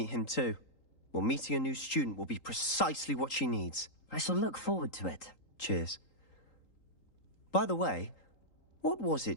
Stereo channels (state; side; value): late; right; 3.8 ms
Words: him too. Well, meeting a new student will be precisely what she needs. I shall look forward to it. Cheers. By the way, what was